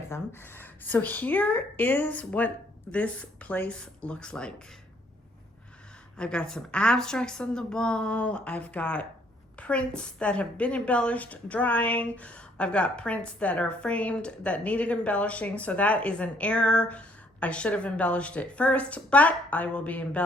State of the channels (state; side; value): normal; both; correlation 0.65